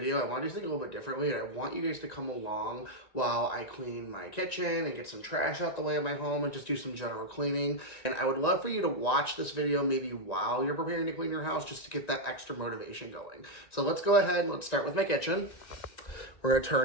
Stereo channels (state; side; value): late; right; 1.9 ms